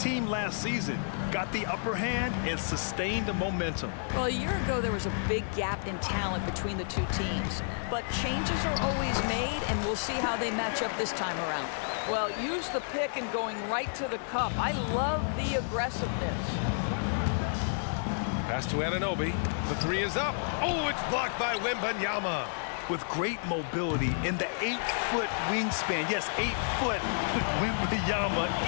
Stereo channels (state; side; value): silent; right; digital silence